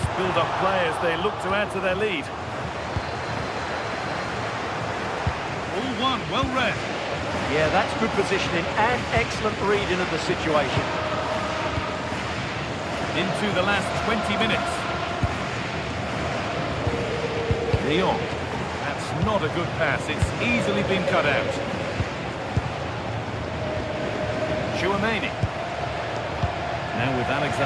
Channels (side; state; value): both; identical; correlation 1.00